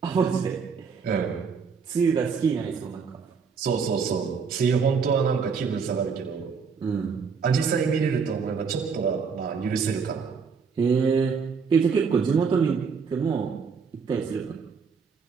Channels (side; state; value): left; quieter; 5.7 dB